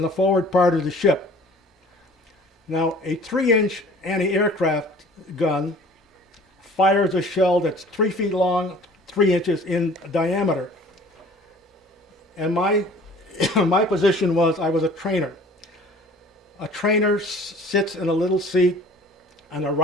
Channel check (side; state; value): both; normal; correlation 0.49